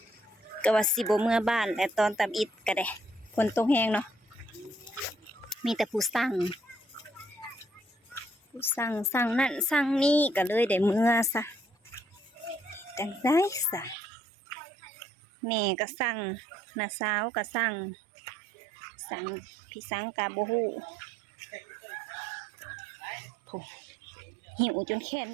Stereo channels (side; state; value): left; drops out; at 14.0 s